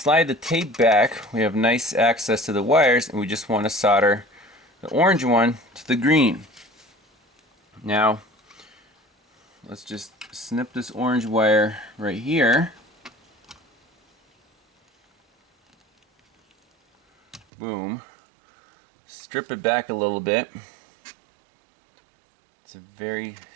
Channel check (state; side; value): drops out; left; at 17.4 s